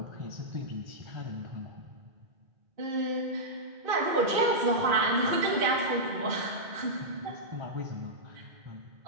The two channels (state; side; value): late; left; 2.4 ms